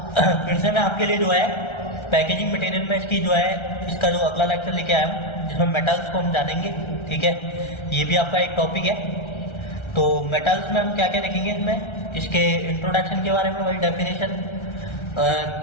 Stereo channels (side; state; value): right; late; 1.3 ms